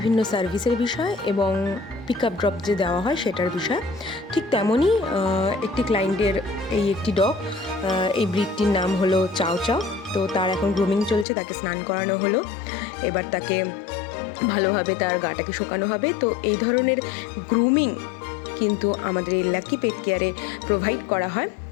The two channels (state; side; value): drops out; right; at 11.2 s